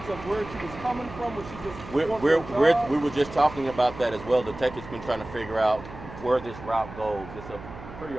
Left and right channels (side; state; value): right; noise; hum, 14 dB below the sound